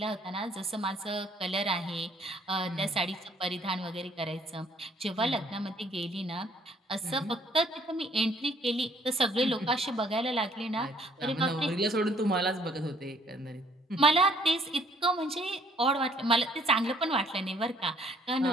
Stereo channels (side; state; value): both; normal; correlation 0.62